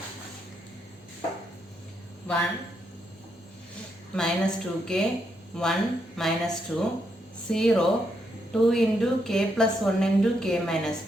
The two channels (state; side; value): normal; both; correlation 0.78